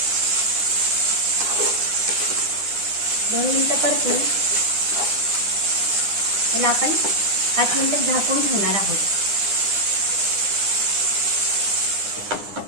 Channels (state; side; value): late; left; 9.8 ms